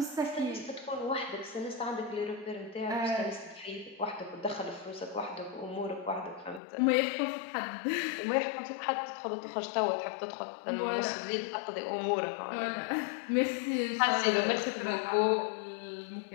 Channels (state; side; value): drops out; right; at 6.6 s